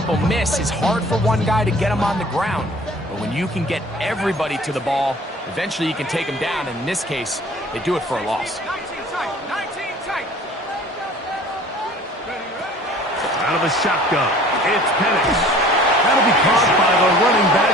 miss is hard for one guy to get him on the ground. But when you can get everybody to the ball, eventually you can take him down. And in this case, they do it for a loss. 19 tight. 19 tight. Out of the shotgun, it's Penix. That'll be caught by the running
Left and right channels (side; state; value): both; normal; correlation 0.49